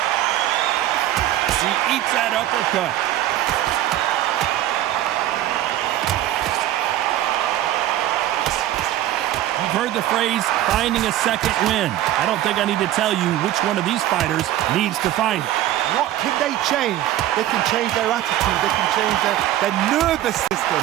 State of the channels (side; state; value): left; quieter; 13.3 dB